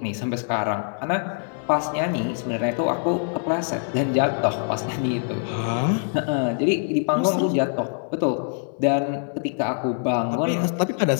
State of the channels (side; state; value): right; silent; 63 dB below the other